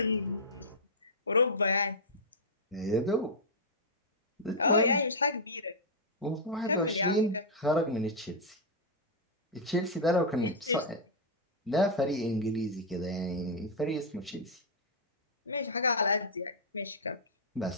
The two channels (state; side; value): normal; both; correlation -0.06